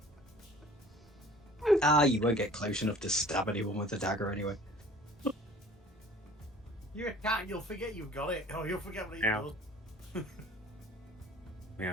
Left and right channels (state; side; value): normal; both; correlation 0.48